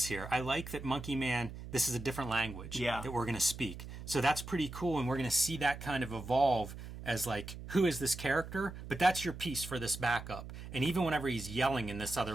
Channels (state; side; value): noise; right; hum, 11 dB below the sound